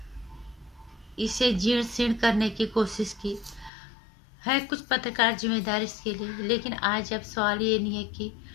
इसे जीर्ण शीर्ण करने की कोशिश की है, कुछ पत्रकार जिम्मेदार इसके लिए। लेकिन आज अब सवाल ये नहीं है कि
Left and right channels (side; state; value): right; drops out; at 3.7 s